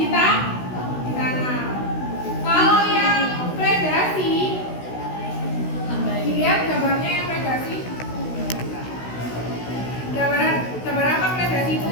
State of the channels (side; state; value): right; late; 16 ms